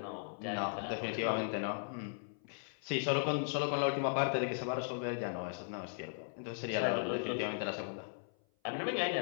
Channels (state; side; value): silent; right; 53 dB below the other